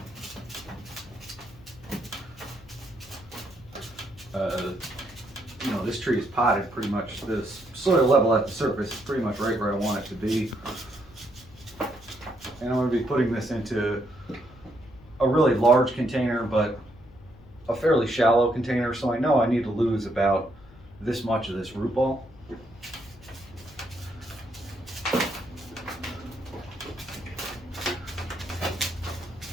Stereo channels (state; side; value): noise; left; hum, 22 dB below the sound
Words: You know, this tree is potted pretty much. This soil level at the surface is pretty much right where I want it to be. And I'm going to be putting this into a really large container, but a fairly shallow container, so I know I need to lose about this much of this root ball.